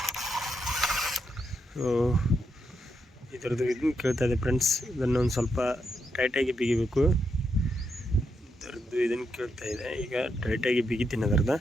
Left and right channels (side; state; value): both; normal; correlation 0.82